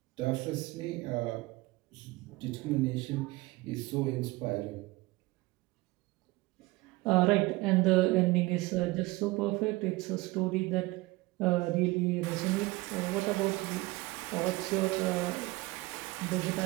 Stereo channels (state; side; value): quieter; left; 21.5 dB